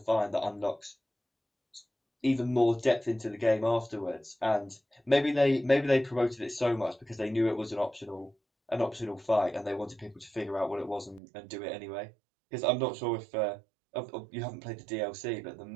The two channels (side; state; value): left; drops out; at 11.2 s